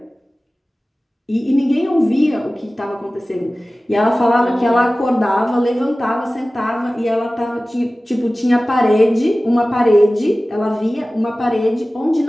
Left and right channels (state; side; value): normal; both; correlation 0.97